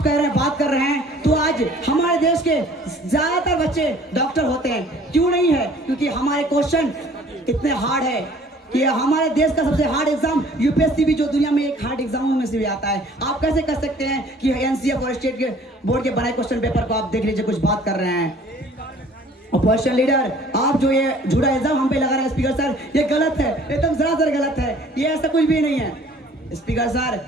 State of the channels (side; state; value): both; normal; correlation 0.53